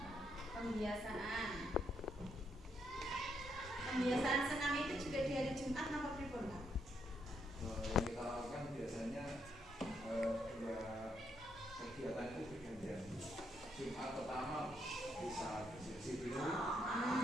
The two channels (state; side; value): normal; both; correlation 0.76